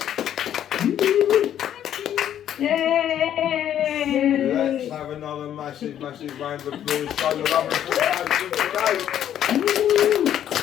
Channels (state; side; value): quieter; right; 10.5 dB